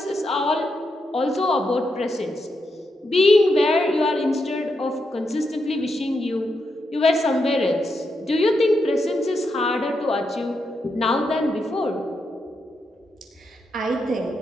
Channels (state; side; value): normal; both; correlation 0.83